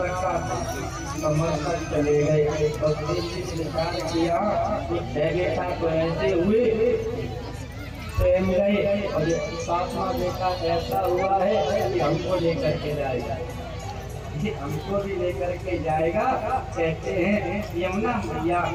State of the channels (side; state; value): both; identical; correlation 1.00